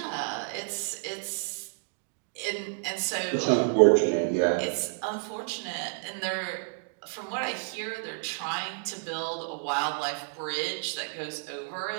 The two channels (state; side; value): silent; left; digital silence